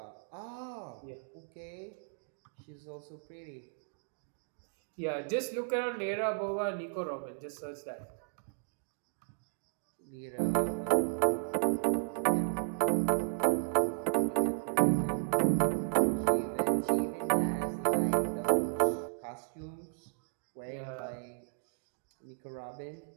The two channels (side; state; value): left; silent; digital silence